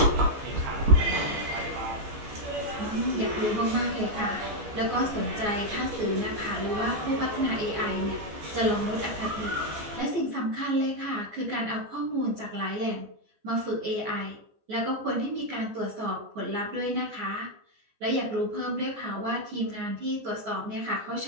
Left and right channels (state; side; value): late; left; 14 ms